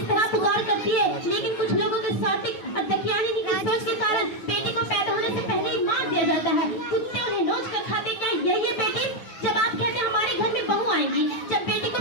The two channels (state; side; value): late; right; 9.0 ms